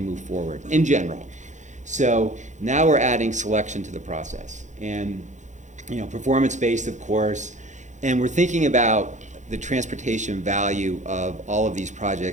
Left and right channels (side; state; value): left; late; 0.35 ms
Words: forward in general. So now we're adding selection to the process and, performance-based, of course, and we're thinking about the transportation value of all of these